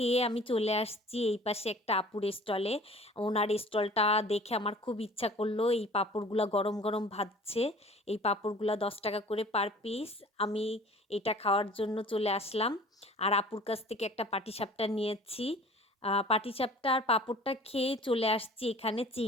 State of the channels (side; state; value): both; normal; correlation 0.47